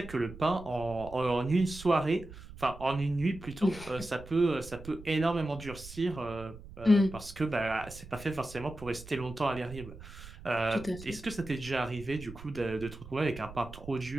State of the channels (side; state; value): right; noise; rumble, 15 dB below the sound